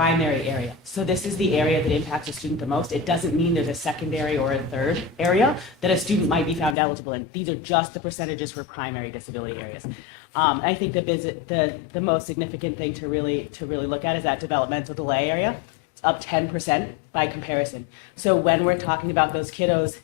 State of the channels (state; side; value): drops out; right; at 6.8 s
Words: area. So this is the area that impacts a student the most. It doesn't mean there's a secondary or a third area that a student might be found eligible in. These are just the percentages for primary disability areas. I think the most significant thing to really look at is that developmental delay area. It's up 10% by comparison. So when we're talking about those kiddos